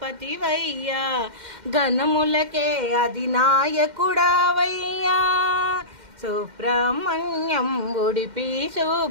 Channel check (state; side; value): late; left; 2.1 ms